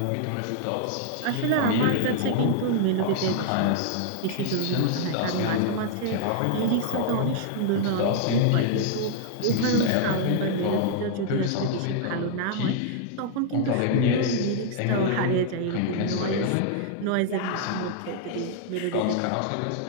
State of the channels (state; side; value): different; both; correlation 0.00